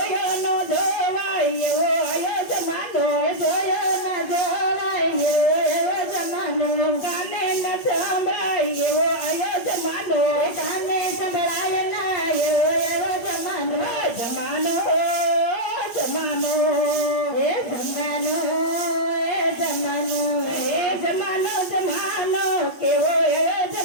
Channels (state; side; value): late; right; 8.7 ms